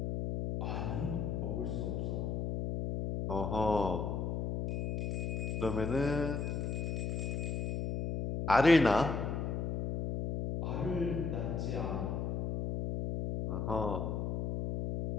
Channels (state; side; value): noise; left; hum, 1 dB below the sound